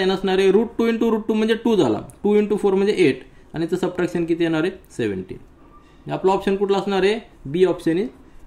असणार आहे. √2 इंटू √2 म्हणजे 2 झाला, 2 इंटू 4 म्हणजे 8 आणि त्याचं सबट्रॅक्शन किती येणार आहे 17. आपला ऑप्शन कुठला असणार आहे बी ऑप्शन इज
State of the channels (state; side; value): identical; both; correlation 1.00